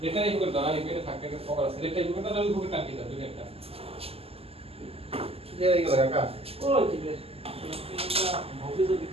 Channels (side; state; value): left; late; 0.29 ms